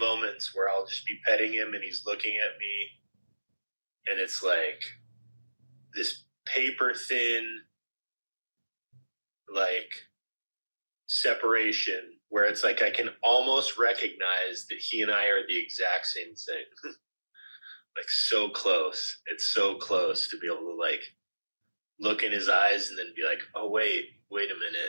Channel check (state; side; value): inverted; both; correlation -1.00